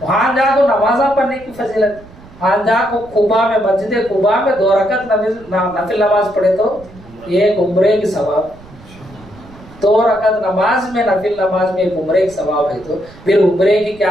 वहां जाकर नमाजा पढ़ने की फजीलत, वहां जाकर कुबा में मस्जिद कुबा में 2 रकत नफिल नमाज पढ़े तो एक उम्रे की सवाब। 2 रकत नमाज में नफिल नमाज में एक उम्रे की सवाब है, तो फिर उम्रे की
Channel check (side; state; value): right; noise; rumble, 21 dB below the sound